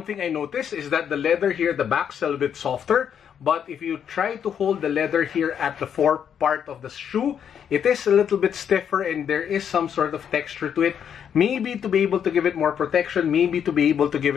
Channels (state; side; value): quieter; right; 8.3 dB